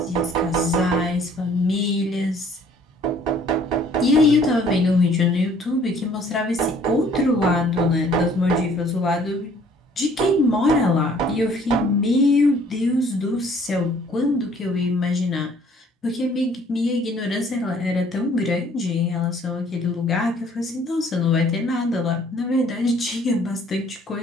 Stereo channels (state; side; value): normal; both; correlation 0.58